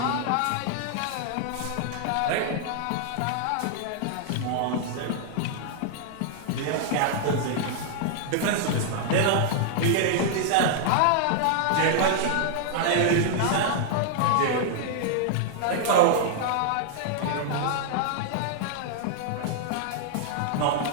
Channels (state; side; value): different; both; correlation -0.01